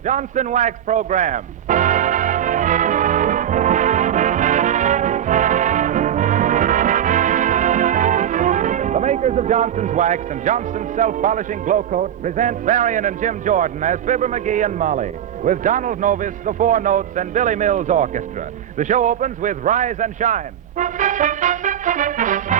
Wax program. The makers of Johnson's Wax and Johnson's Self-Polishing Glow Coat present Marion and Jim Jordan as Fibber McGee and Molly, with Donald Novis, the Four Notes, and Billy Mills Orchestra. The show opens with Rise and Shine.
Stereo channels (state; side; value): quieter; left; 10.1 dB